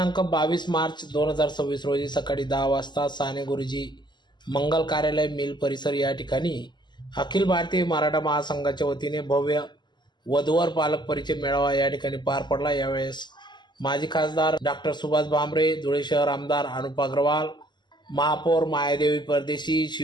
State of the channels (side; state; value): right; late; 0.21 ms